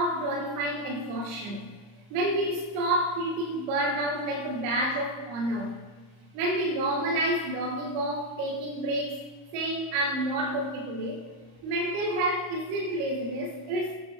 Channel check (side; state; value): left; late; 34 ms